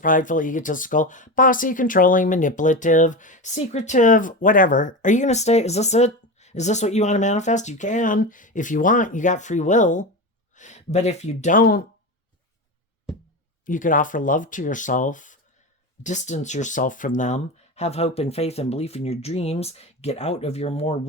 egotistical, bossy, controlling, manipulative, secretive, whatever. Are you going to stay? Is this it? Is this what you want to manifest? You can. If you want, you got free will. But if you don't, you could offer love to yourself, distance yourself from them, have hope and faith and belief in your dreams, get out of your more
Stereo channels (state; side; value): normal; both; correlation 0.22